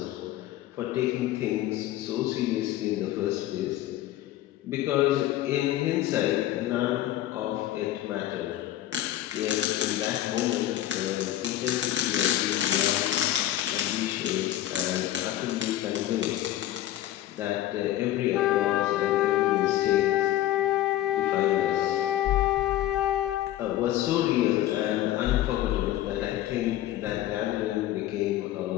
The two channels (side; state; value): right; quieter; 13.6 dB